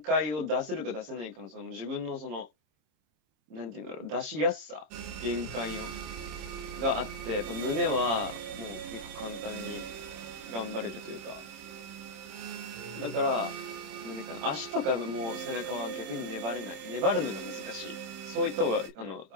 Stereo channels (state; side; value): late; left; 26 ms